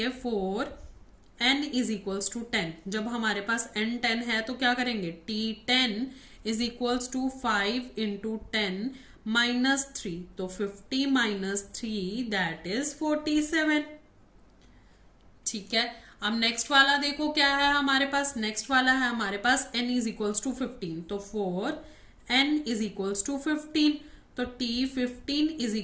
4n इज इक्वल्स टू 10। जब हमारे पास n 10 है तो क्या करेंगे, t10 is equals to 5 into 10 - 3। तो 50 - 3 दैट इज 47। ठीक है, अब नेक्स्ट वाला देखो क्या है हमारे पास, नेक्स्ट वाला है हमारे पास n इज इक्वल्स टू 15। तो 4n इज इक्वल्स टू 15। तो t15 is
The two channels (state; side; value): identical; both; correlation 1.00